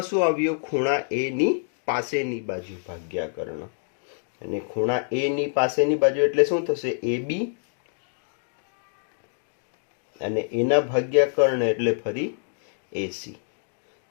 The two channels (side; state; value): right; silent; digital silence